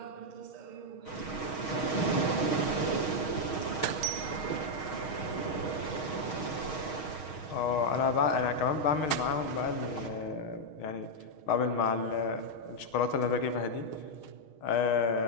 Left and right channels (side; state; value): right; late; 6.4 ms